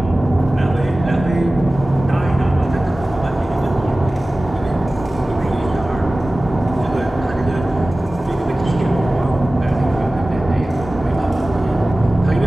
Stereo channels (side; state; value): both; normal; correlation 0.97